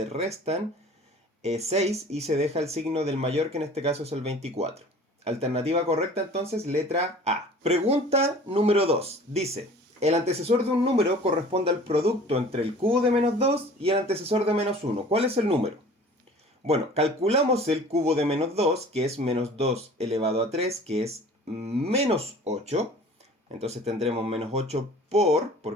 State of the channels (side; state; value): both; normal; correlation 0.46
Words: restan 6 y se deja el signo del mayor, que en este caso es el 24. Alternativa correcta entonces, letra A. Pregunta número 2. Dice, el antecesor de un número corresponde al producto entre el cubo de menos 2 y el antecesor de menos 1. ¿Cuál es el número? Bueno, calculamos el cubo de menos 2, que es menos 2 elevado a 3, que es menos 8. Entonces tendremos menos 8